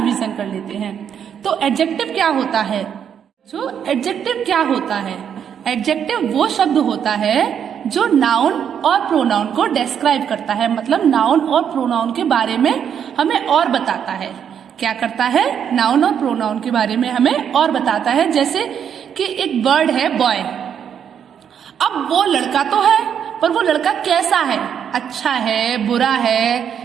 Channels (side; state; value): left; quieter; 8.3 dB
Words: कर लेते हैं। तो एडजेक्टिव क्या होता है? जो एडजेक्टिव क्या होता है? एडजेक्टिव वो शब्द होता है जो नाउन और प्रोनाउन को डिस्क्राइब करता है, मतलब नाउन और प्रोनाउन के बारे में हमें और बताता है। क्या करता है? नाउन और प्रोनाउन के बारे में हमें और बताता है। जैसे कि एक वर्ड है बॉय। अब वो लड़का तो है, पर वो लड़का कैसा है? अच्छा है, बुरा